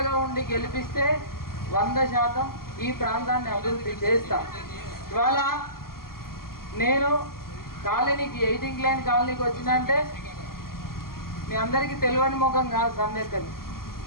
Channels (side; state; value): right; late; 0.92 ms